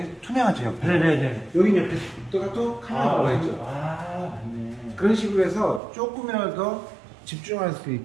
투명하죠 옆에. 네네네. 여기 옆에 또 칼라가 들어가 있죠. 아, 맞네. 그런 식으로 해서 조금이라도 더 집중할 수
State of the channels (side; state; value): left; drops out; at 5.8 s